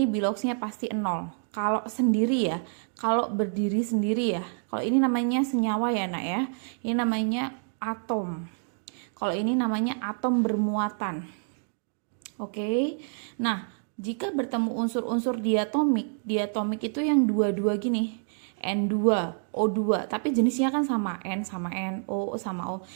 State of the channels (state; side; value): silent; left; 59 dB below the other